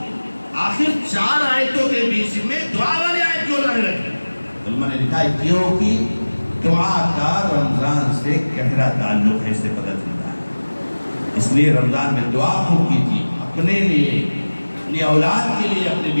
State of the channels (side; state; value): both; inverted; correlation -1.00